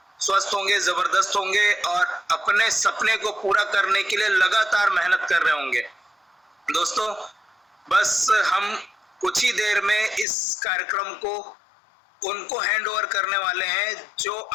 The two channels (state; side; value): drops out; right; at 10.2 s